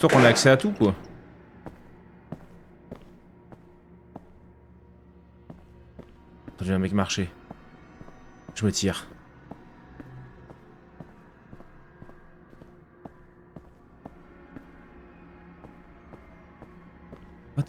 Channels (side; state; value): both; identical; correlation 1.00